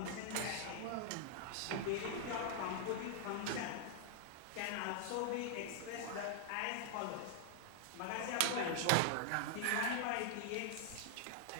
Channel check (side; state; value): both; different; correlation 0.00